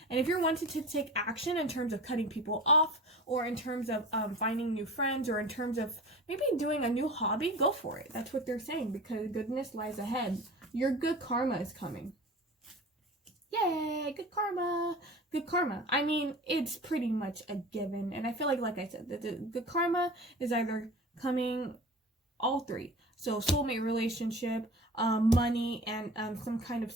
And if you're wanting to take action in terms of cutting people off, or in terms of finding new friends, or in terms of maybe doing a new hobby, go for it. That's what they're saying, because goodness lies ahead. Your good karma is coming. Yay, good karma. Good karma. I mean, it's pretty much a given. And I feel like I said, the good karma is either coming all three. So soulmate relationship, money, and some kind of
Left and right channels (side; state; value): both; normal; correlation 0.37